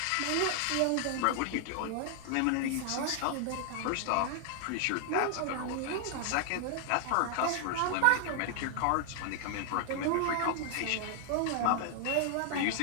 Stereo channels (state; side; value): different; both; correlation 0.00